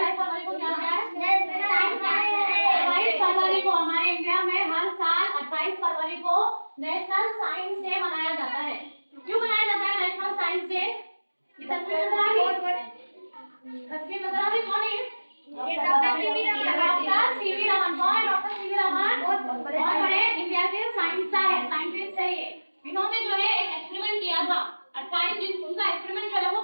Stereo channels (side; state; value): both; inverted; correlation -1.00